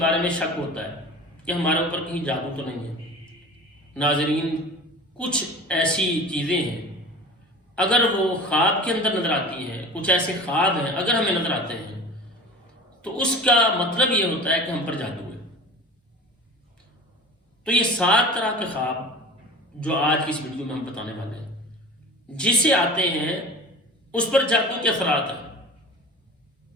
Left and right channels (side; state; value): both; normal; correlation 0.37